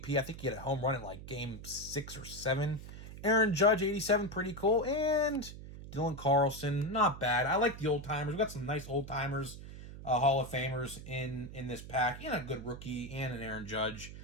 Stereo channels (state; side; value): noise; right; hum, 13 dB below the sound